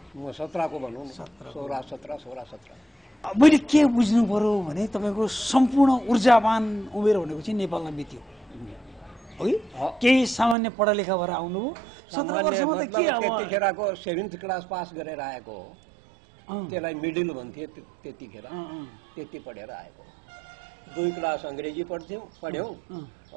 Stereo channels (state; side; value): drops out; left; at 10.6 s